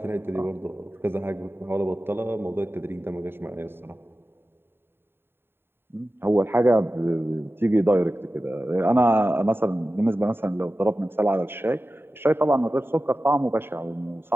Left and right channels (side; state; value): left; late; 0.11 ms